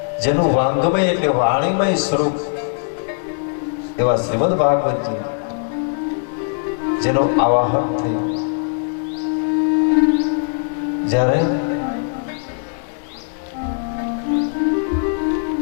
જેનું વાંગમય એટલે વાણીમય સ્વરૂપ એવા શ્રીમદ ભાગવતજી જેનું આવાહન થયું, જ્યારે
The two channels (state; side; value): silent; right; digital silence